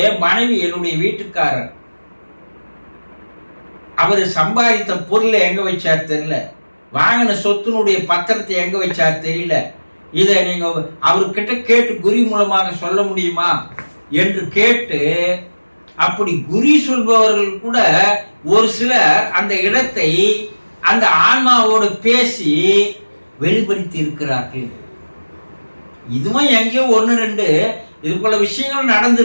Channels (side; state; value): both; inverted; correlation -1.00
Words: மனைவி, என்னுடைய வீட்டுக்காரர், அவர் சம்பாதித்த பொருளை எங்க வச்சார் தெரியல, வாங்கின சொத்தினுடைய பத்திரத்தை எங்க வச்சார் தெரியல, இதை நீங்க அவர்கிட்ட கேட்டு குறி மூலமாக சொல்ல முடியுமா என்று கேட்டு, அப்படி குறி சொல்பவர்கள் கூட ஒரு சிலர் அந்த இடத்தை அந்த ஆன்மாவோடு பேசி வெளிப்படுத்தி இருக்கிறார்கள். இதுவும் எங்கேயோ ஒன்று ரெண்டு இது போல விஷயங்கள்